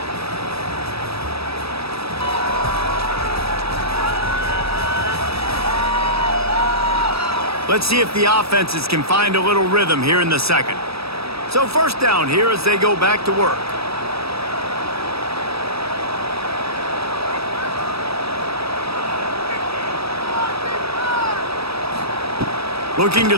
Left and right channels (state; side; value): late; left; 0.77 ms